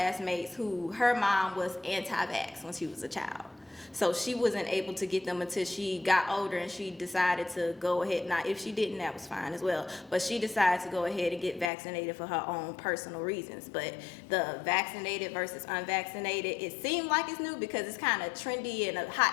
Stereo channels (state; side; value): drops out; right; at 11.7 s